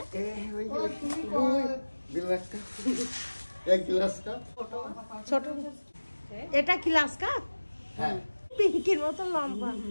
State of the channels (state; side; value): inverted; both; correlation -1.00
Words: এক গ্লাস কাপ। ছোট। এটা কি গ্লাস কাপ? হ্যাঁ, পিঙ্কির মতো লম্বা।